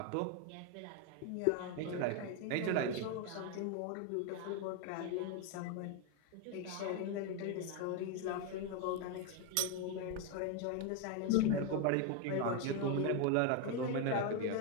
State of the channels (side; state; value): both; different; correlation 0.01